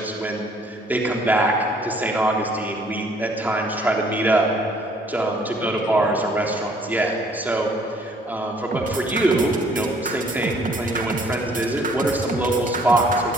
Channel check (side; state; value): both; normal; correlation 0.60